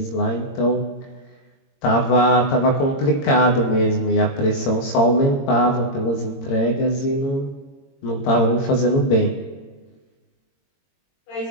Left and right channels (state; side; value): late; right; 22 ms